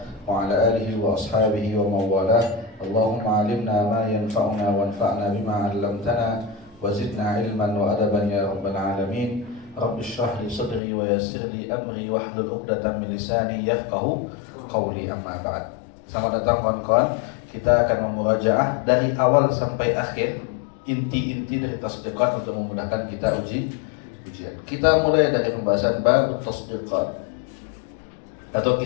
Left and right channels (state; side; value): drops out; right; at 10.8 s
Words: wa ala alihi wa ashabihi wa mawalah. Allahumma alimna ma yanfa'una wanfa'na bima 'allamtana wa zidna ilman wa adaban ya rabbal alamin. Rabbi shrah li sadri wa yassir li amri wahlul 'uqdatam min lisani yafqahu qawli, amma ba'd. Selamat datang kawan-kawan. Kita akan memurajaah dari awal sampai akhir inti-inti dari tasdiqat untuk memudahkan kita ujian. Kita mulai dari pembahasan bab tasdiqat atau